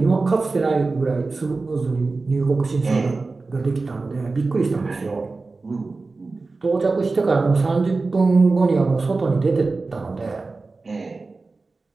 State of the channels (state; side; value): quieter; left; 3.8 dB